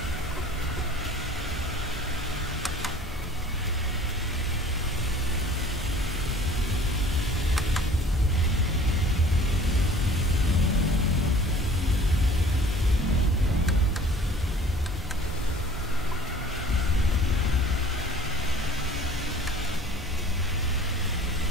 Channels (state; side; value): normal; both; correlation 0.48